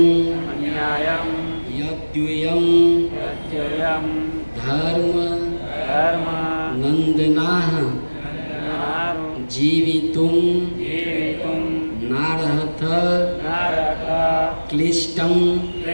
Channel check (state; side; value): inverted; both; correlation -1.00